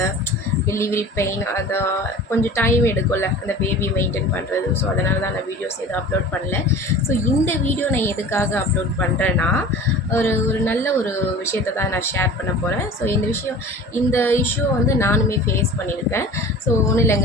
டெலிவரி பெயின் அதை கொஞ்சம் டைம் எடுக்கும்ல அந்த பேபி மெயின்டைன் பண்ணுறது. ஸோ அதனால தான் நான் வீடியோஸ் எதுவும் அப்லோட் பண்ணல. ஸோ இந்த வீடியோ நான் எதுக்காக அப்லோட் பண்ணுறேன்னா, ஒரு நல்ல ஒரு விஷயத்தை தான் நான் ஷேர் பண்ண போகிறேன். ஸோ இந்த இஷ்யூ வந்து நானுமே ஃபேஸ் பண்ணியிருக்கேன். ஸோ ஒன்றும்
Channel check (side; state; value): both; normal; correlation 0.40